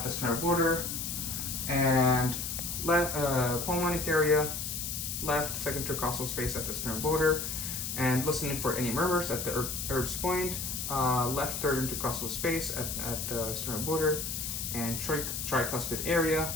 the sternal border, and left pulmonic area, left second intercostal space at the sternal border, and listening for any murmurs at the Erb's point, left third intercostal space at the sternal border, and tricuspid area,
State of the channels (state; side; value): noise; left; hiss, 4 dB below the sound